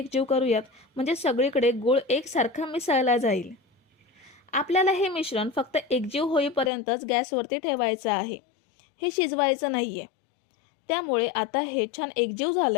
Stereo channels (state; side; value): drops out; right; at 6.7 s